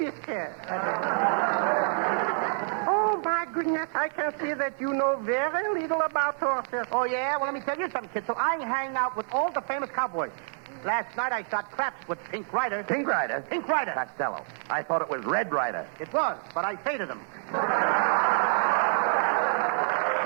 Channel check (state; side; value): silent; left; digital silence